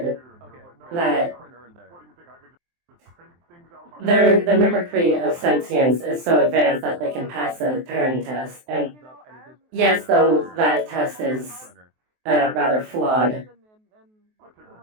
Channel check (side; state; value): left; late; 23 ms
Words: that the mimicry of sentience is so advanced that they can pass a Turing test. And yes, though that test is rather flawed,